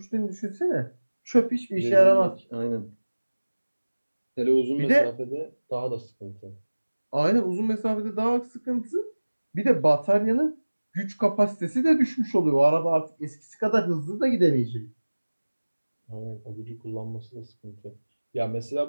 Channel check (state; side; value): inverted; both; correlation -1.00